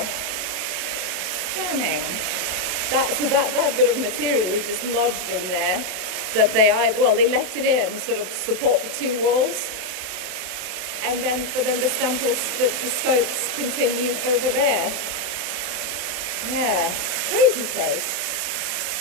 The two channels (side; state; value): left; late; 27 ms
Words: stunning. That bit of material is just lodged in there, that they left it in sort of support the two walls, and then the stemples, the scopes continue over there. Yeah, crazy place.